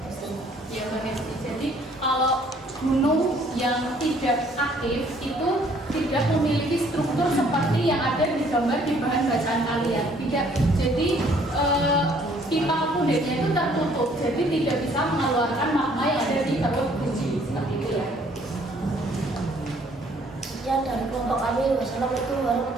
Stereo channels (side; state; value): both; normal; correlation 0.61